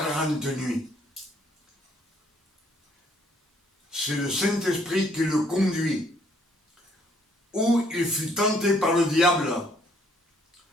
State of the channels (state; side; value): normal; both; correlation 0.65